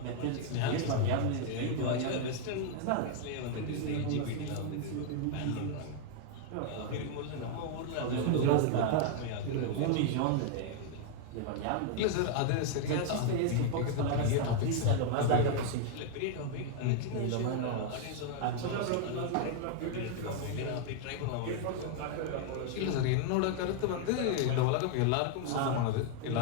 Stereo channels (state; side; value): different; both; correlation 0.00